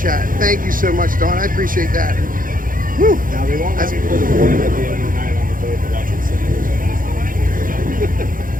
Thank you so much, Dawn. I appreciate that. Woo. Now they won't have people to board at the end of the night on the boat to watch it sing.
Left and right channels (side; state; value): left; late; 0.40 ms